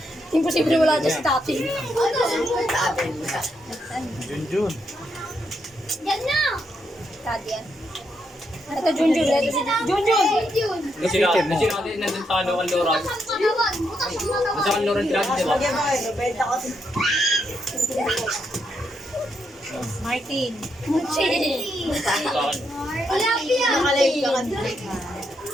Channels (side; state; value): both; normal; correlation 0.80